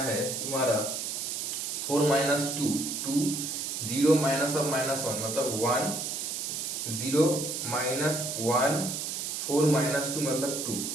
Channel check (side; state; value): right; noise; hiss, 3 dB below the sound